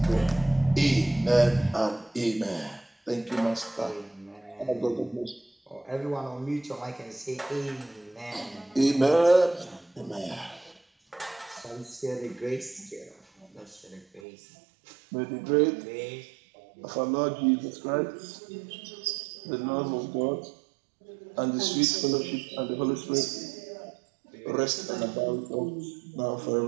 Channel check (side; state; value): left; drops out; at 14.2 s